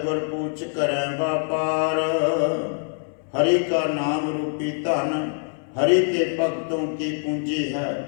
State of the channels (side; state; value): right; silent; digital silence